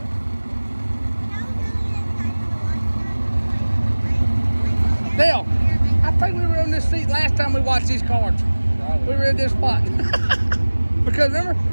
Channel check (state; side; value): inverted; both; correlation -1.00